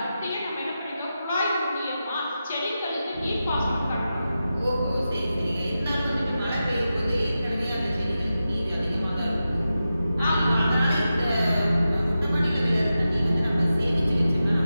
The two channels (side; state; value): both; inverted; correlation -0.91